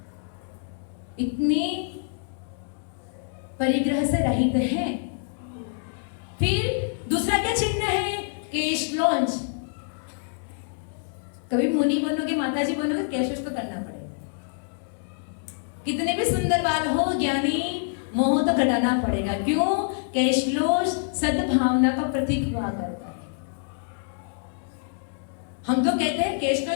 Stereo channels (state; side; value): silent; right; digital silence